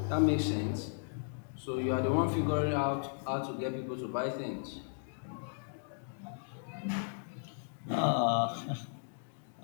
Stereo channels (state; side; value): silent; right; digital silence